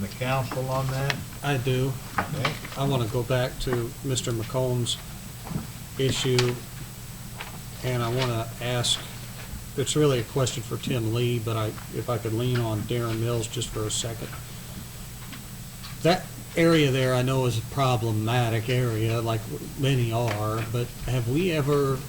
the council on that? I do. Okay, I want to go back to Mr. McComb's issue, and I want to ask, it's really a question for Tim Lee, but if I could lean on Darren Mills just for a second. That area there I know is a problematic area, like many are, but have we ever,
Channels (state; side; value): identical; both; correlation 1.00